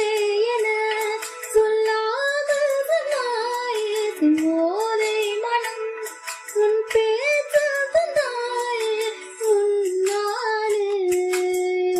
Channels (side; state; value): both; identical; correlation 1.00